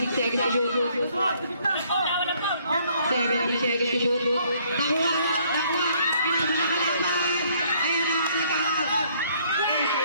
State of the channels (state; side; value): inverted; both; correlation -0.64